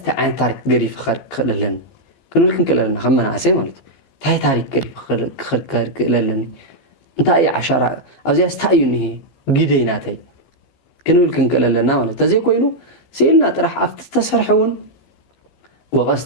تارك قريف خارق للن ክንብል ክንክእለና ከም መናእሰይ ማለት እዩ እንታይ ታሪክ ክኽድ ክእለለኒ እንታይ እዩ ዓሻራ ኣብዚያ ስታይ እዩ እኒሄ ግደይናተይ ክንብል ክንክእለለና ማለት ተዘይ ኮይኑ ስኢልና ጥራሕ ኣብቲ ዝተሰርሐ እውን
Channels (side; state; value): right; late; 15 ms